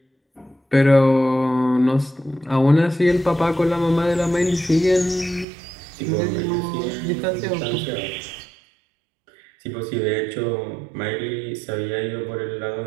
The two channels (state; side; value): drops out; left; at 5.5 s